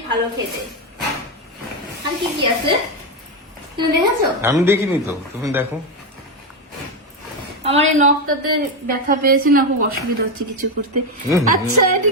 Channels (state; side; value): normal; both; correlation 0.09